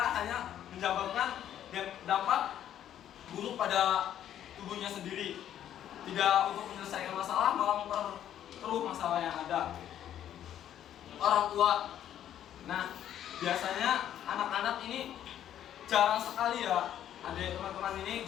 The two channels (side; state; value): right; quieter; 10.8 dB